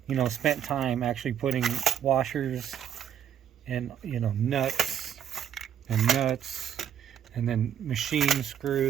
spent time actually putting washers and nuts and then machine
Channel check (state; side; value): quieter; left; 9.5 dB